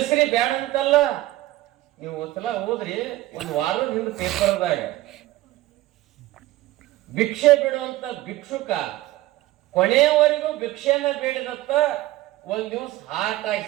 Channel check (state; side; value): quieter; left; 16.7 dB